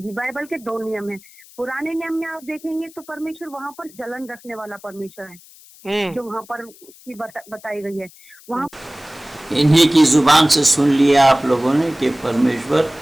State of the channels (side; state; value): left; noise; hiss, 23 dB below the sound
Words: बाइबल के दो नियम है। पुराने नियम में आप देखेंगे तो परमेश्वर वहाँ पर जलन रखने वाला परमेश्वर है, जो वहाँ पर उसकी बताई गई है। वहाँ इन्हीं की जुबान से सुन लिया आप लोगों ने कि परमेश्वर